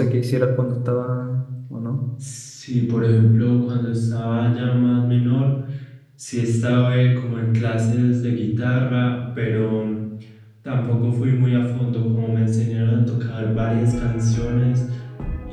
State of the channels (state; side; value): identical; both; correlation 1.00